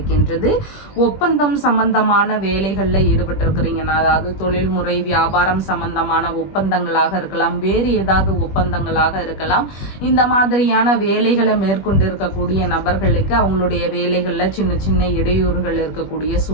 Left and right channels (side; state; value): right; late; 21 ms